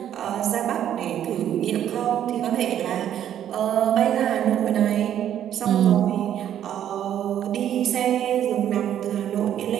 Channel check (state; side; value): quieter; left; 10.5 dB